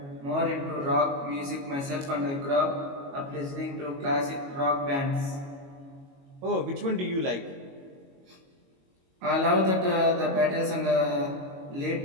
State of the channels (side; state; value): left; late; 22 ms